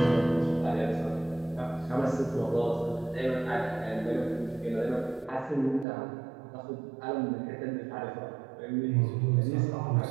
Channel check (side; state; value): left; drops out; at 5.9 s